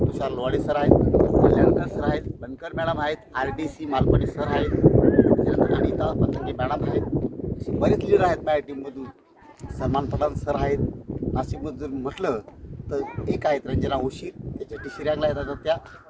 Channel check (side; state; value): both; identical; correlation 1.00